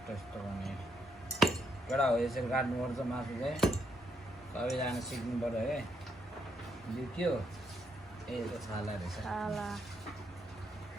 यस्तो भने केटा हो यसरी काट्नुपर्छ मासु चाहिँ सबैजना सिक्नु पऱ्यो है यो के हो ए यो छाला रहेछ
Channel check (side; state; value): both; normal; correlation 0.77